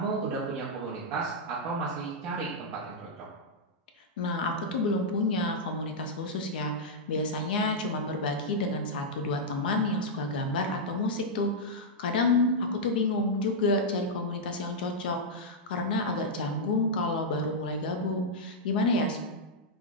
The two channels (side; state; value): both; normal; correlation -0.06